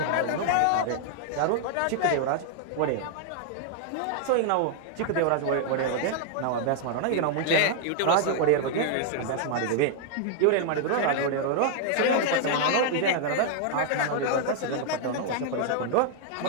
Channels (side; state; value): both; different; correlation 0.00